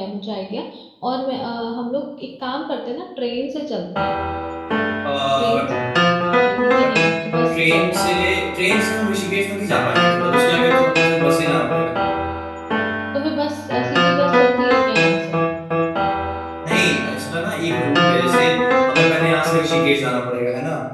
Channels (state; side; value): identical; both; correlation 1.00